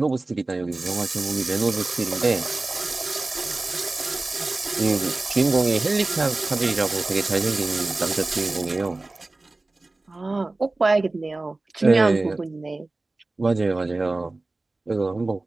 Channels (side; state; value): left; quieter; 3.1 dB